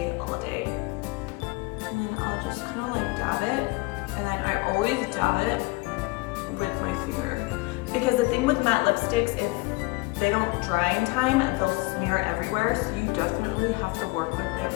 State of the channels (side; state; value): right; quieter; 24.5 dB